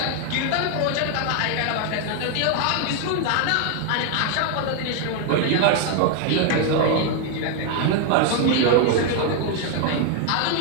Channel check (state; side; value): different; both; correlation 0.00